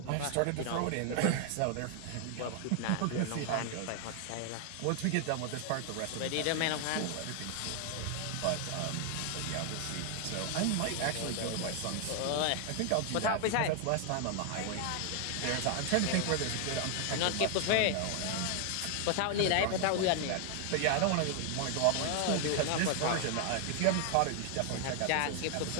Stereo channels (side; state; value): both; different; correlation 0.00